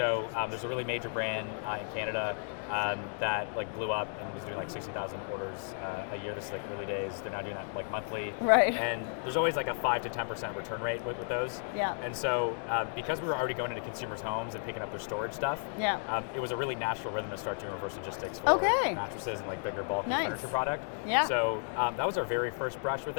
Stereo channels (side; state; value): right; silent; 56 dB below the other